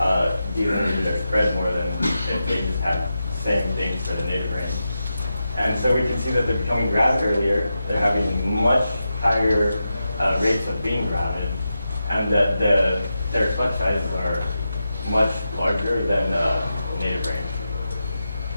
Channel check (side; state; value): both; inverted; correlation -0.90